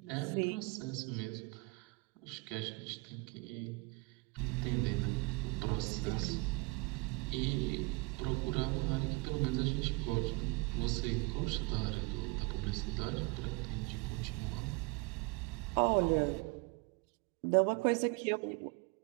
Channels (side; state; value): left; quieter; 27.0 dB